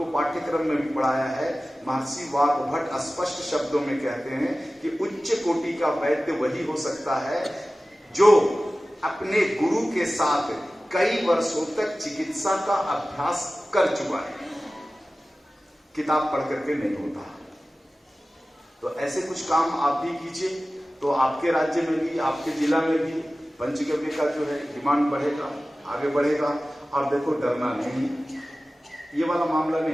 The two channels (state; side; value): normal; both; correlation 0.96